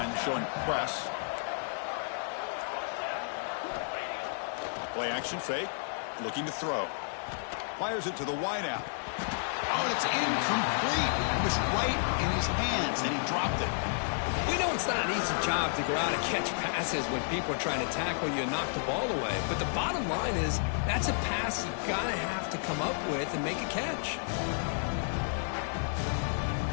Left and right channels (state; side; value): silent; right; digital silence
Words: showing press. Play action fake, looking to throw. Fires it to the wideout. Oh, it's incomplete. It was right in his hands, and he dropped it. We know it's not an easy job to go out and catch passes when people are trying to tackle you and knock the ball away. But the bottom line is that's a pass you got to have to come up with and make a catch.